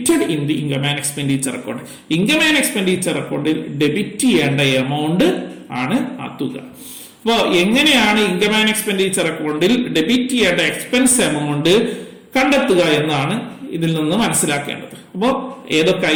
in the income and expenditure account. Income and expenditure അക്കൗണ്ടിൽ ഡെബിറ്റ് ചെയ്യേണ്ട എമൗണ്ട് ആണ് ആ തുക. അപ്പോ എങ്ങനെയാണ് ഇൻകം ആൻഡ് എക്സ്പെൻഡിച്ചർ അക്കൗണ്ടിൽ ഡെബിറ്റ് ചെയ്യേണ്ട എക്സ്പെൻസ് എമൗണ്ട് കണ്ടെത്തുക എന്നാണ് ഇതിൽ നിന്ന് മനസ്സിലാക്കേണ്ടത്. അപ്പോ ഏതൊക്കെ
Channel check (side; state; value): both; identical; correlation 1.00